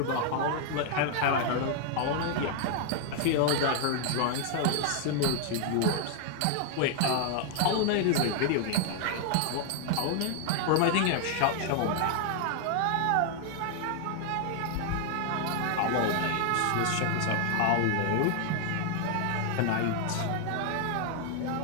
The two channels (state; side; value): different; both; correlation 0.00